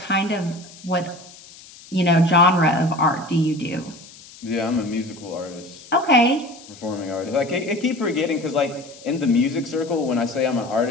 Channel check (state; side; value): noise; left; hiss, 20 dB below the sound